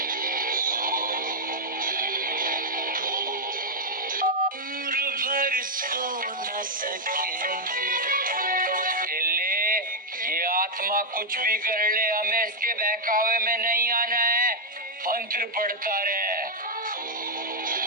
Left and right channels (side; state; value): both; normal; correlation -0.03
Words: उम्र भर सो न सकेंगे। चले, ये आत्मा कुछ भी कर ले, हमें इसके बहकावे में नहीं आना है। मंत्र पढ़ता रहे।